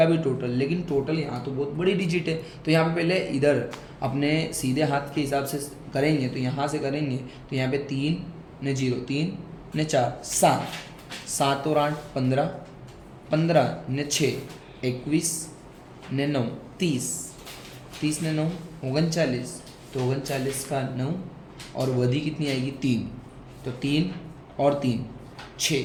भी टोटल, लेकिन टोटल यहाँ तो बहुत बड़ी डिजिट है, तो यहाँ पे पहले इधर अपने सीधे हाथ के हिसाब से करेंगे, तो यहाँ से करेंगे तो यहाँ पे 3 ने 0 3 ने 4 7 7 और 8 15 15 ने 6 21 ने 9 30 30 ने 9 39, तो 39 का 9 और वधी कितनी आएगी 3, तो 3 और 3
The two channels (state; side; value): identical; both; correlation 1.00